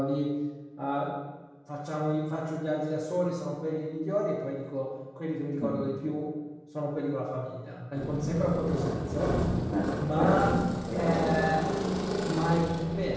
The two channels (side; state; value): both; identical; correlation 1.00